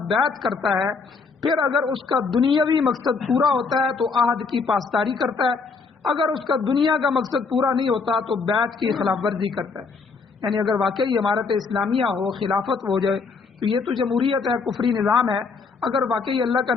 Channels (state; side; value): quieter; right; 4.7 dB